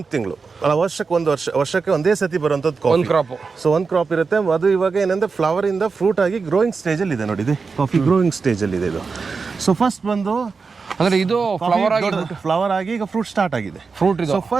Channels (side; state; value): left; quieter; 4.8 dB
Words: ತಿಂಗಳು ಅಲ್ಲ, ವರ್ಷಕ್ಕೆ ಒಂದೇ ಸತಿ ಬರುವಂಥದ್ದು ಕಾಫಿ ಕ್ರಾಪ್. ಸೊ ಒಂದು ಕ್ರಾಪ್ ಇರುತ್ತೆ. ಅದು ಇವಾಗ ಏನಂದ್ರೆ ಫ್ಲವರ್ ಇಂದ ಫ್ರೂಟ್ ಆಗಿ ಗ್ರೋಯಿಂಗ್ ಸ್ಟೇಜ್ ಅಲ್ಲಿ ಇದೆ ನೋಡಿ. ಇದು ಕಾಫಿ ಗ್ರೋಯಿಂಗ್ ಸ್ಟೇಜ್ ಅಲ್ಲಿ ಇದೆ ಇದು. ಸೊ ಫಸ್ಟ್ ಬಂದು ಅಂದ್ರೆ ಇದು ಫ್ಲವರ್ ಆಗಿ ಈಗ ಫ್ರೂಟ್ ಸ್ಟಾರ್ಟ್ ಆಗಿದೆ. ಫ್ರೂಟ್. ಸೊ